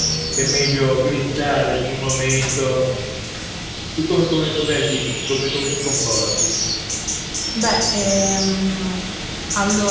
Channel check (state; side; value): identical; both; correlation 1.00